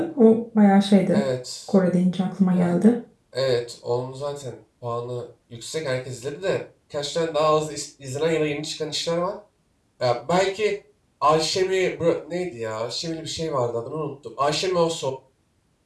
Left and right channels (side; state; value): both; identical; correlation 1.00